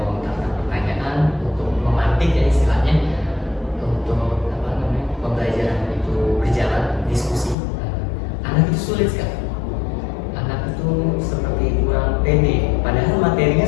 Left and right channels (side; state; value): right; drops out; at 7.6 s